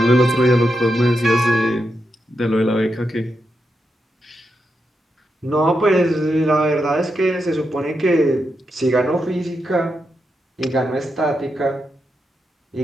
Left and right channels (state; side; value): normal; both; correlation 0.85